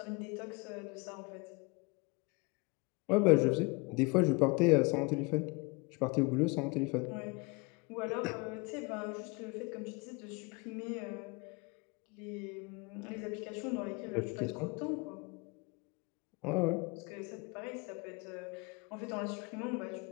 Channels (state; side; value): quieter; right; 28.1 dB